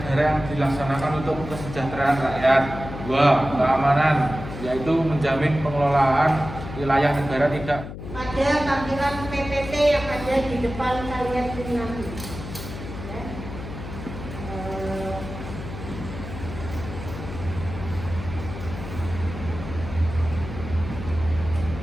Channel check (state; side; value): noise; left; hum, 10 dB below the sound